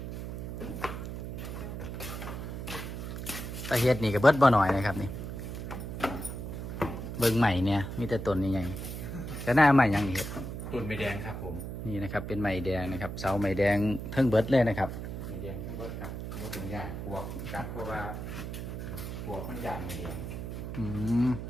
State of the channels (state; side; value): noise; right; hum, 6 dB below the sound